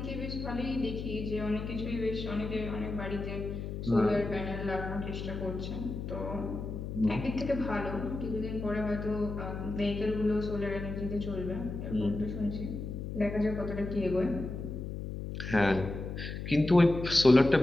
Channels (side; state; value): left; noise; hum, 6 dB below the sound